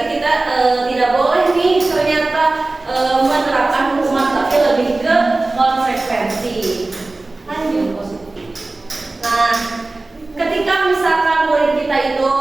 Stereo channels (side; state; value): left; quieter; 3.1 dB